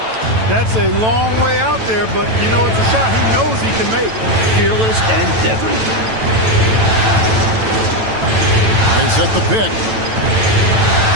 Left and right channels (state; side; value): late; left; 9.1 ms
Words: That's a long way out there, but you know it's a shot he knows he can make. Fearless and deadly. They set the pick.